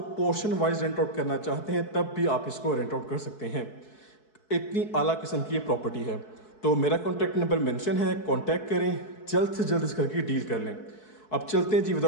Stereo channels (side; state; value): right; late; 4.6 ms